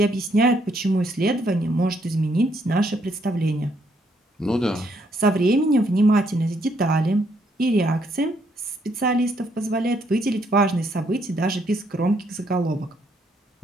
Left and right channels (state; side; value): normal; both; correlation 0.71